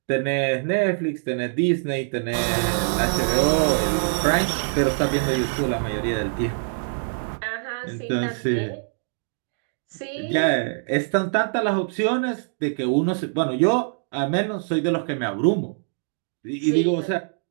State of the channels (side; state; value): left; silent; digital silence